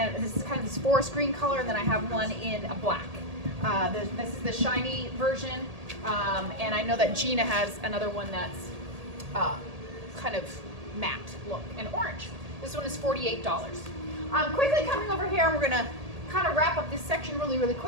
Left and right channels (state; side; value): late; left; 1.8 ms